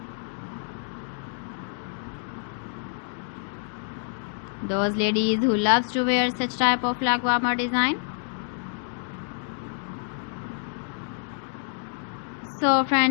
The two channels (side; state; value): right; silent; 58 dB below the other